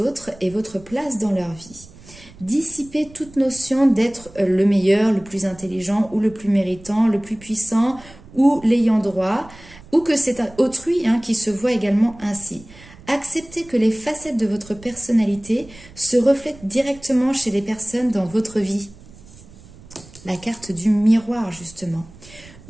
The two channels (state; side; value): noise; right; rumble, 21 dB below the sound